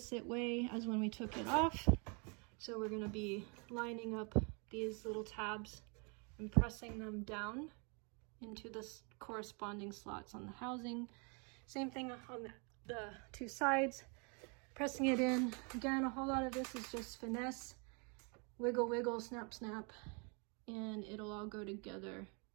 way as when we took it off. So we're gonna be lining up these little tabs and pressing them down into the corresponding slots on the housing. Same thing on the 2 sides, pressing it in. Again, a whole lot of this is just finesse, wiggle, wiggle, snap, snap, and it'll all go together.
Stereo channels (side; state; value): left; quieter; 34.4 dB